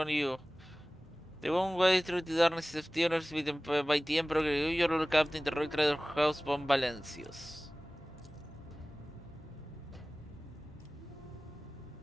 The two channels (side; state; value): both; normal; correlation 0.98